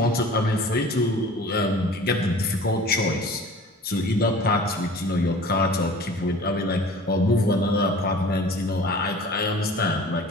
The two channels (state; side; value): normal; both; correlation 0.44